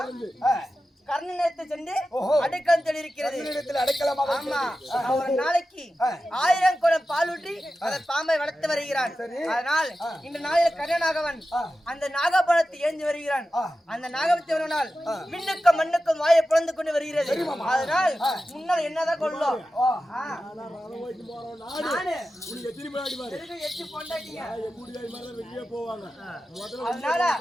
கர்ணனத்தை சென்று அடைக்கலம் தெரிவிக்கிறது. ஆமா ஒரு நாளைக்கு 1000 குடம் பால் ஊற்றி அந்த பாம்பை வளர்த்து வருகிறான். அதனால் இந்த நாளில் கர்ணனாகவன் அந்த நாகபாலத்தை ஏந்தி வருகிறான். அந்த நாகபத்தை வருவனால் விண்ணுக்கும் மண்ணுக்கும் வாயை பிளந்து கொண்டு வருகிறது. அதனால் முன்னால் என்னதான் கொள்ளும் அதனால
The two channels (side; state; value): both; normal; correlation 0.93